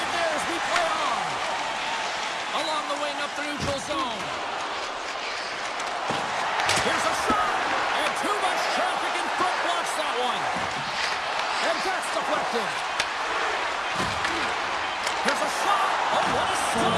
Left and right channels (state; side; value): identical; both; correlation 1.00